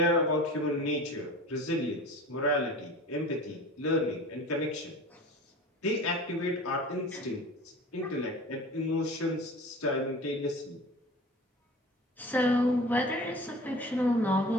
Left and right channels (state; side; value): normal; both; correlation 0.39